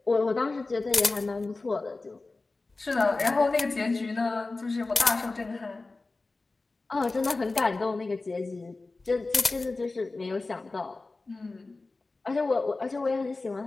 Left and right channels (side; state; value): right; quieter; 3.5 dB